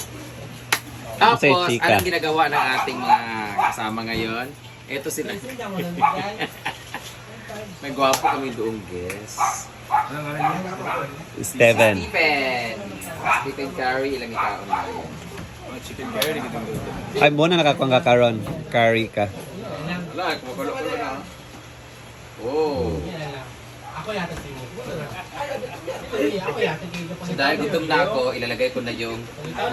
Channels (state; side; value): identical; both; correlation 1.00